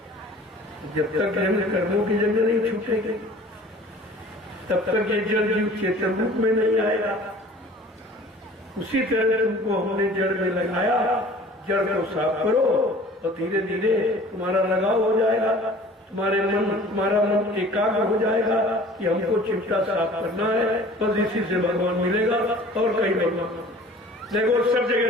जब तक कर्मों की जंग नहीं छूटेगी तब तक ये जड़ जीव चेतन रूप में नहीं आएगा। उसी तरह तुमको हमने जड़ में लगाया, जड़ को साफ करो और धीरे धीरे तुम्हारा लगाव हो जाएगा, तुम्हारा मन एकाग्र हो जाएगा कि हमको चिमटा साफ करना है, बस इसी से भगवान मिलेगा और कहीं भगवान। देखो सब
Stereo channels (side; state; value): both; normal; correlation 0.47